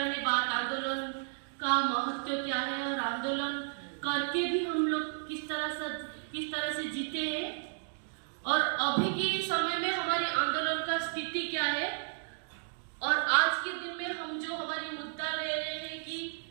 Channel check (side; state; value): left; silent; digital silence